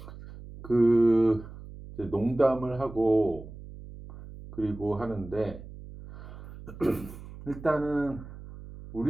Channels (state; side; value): noise; right; hum, 15 dB below the sound